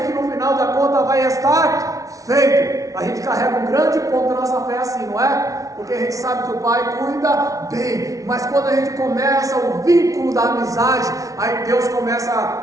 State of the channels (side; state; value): left; late; 0.17 ms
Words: que no final da conta vai estar feito. A gente carrega um grande ponto da nossa fé assim, não é? Porque a gente sabe que o Pai cuida bem, mas quando a gente começa o vínculo da amizade, aí Deus começa